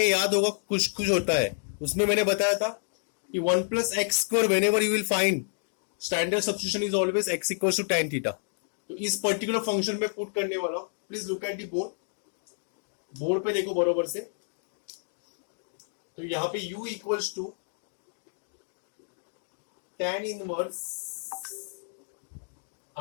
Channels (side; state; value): right; silent; digital silence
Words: याद होगा कुछ कुछ होता है, उसमें मैंने बताया था कि 1 plus x square whenever you will find standard substitution is always x equals to tan theta. तो इस पर्टिकुलर फंक्शन में पुट करने वाला हूं. Please look at the board. Board पे देखो बरोबर से. तो यहां पे u equals to tan inverse